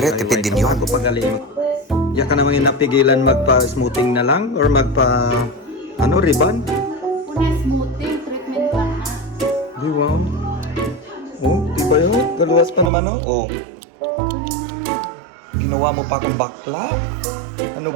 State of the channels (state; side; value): drops out; left; at 12.9 s